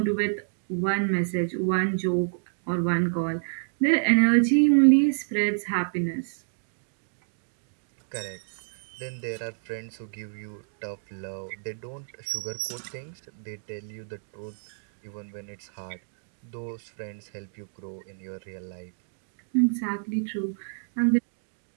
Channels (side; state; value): left; silent; digital silence